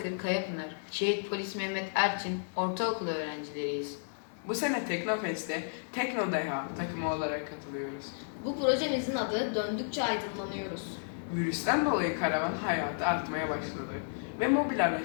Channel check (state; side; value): silent; right; digital silence